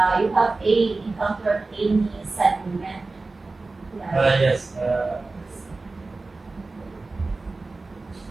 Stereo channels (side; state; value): left; quieter; 3.5 dB